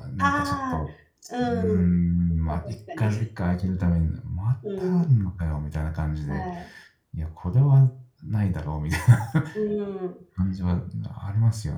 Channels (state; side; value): identical; both; correlation 1.00